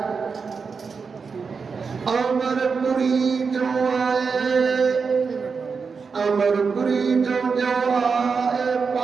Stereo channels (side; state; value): left; quieter; 5.3 dB